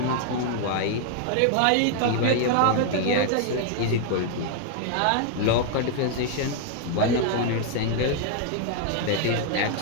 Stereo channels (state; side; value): different; both; correlation 0.00